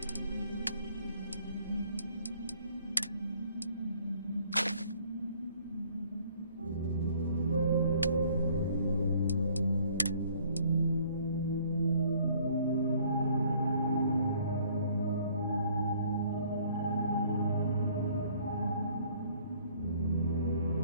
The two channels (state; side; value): inverted; both; correlation -0.59